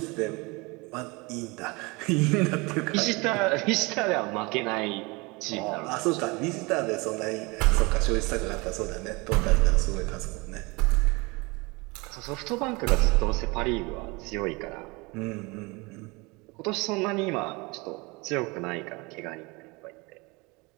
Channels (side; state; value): left; quieter; 26.1 dB